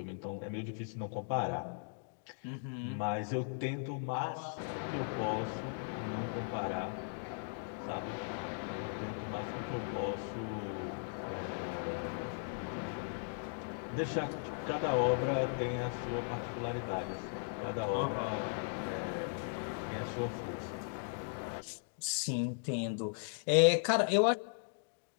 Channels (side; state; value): right; silent; digital silence